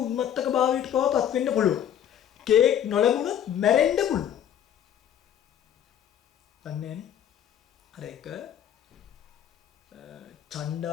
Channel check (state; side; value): quieter; right; 9.9 dB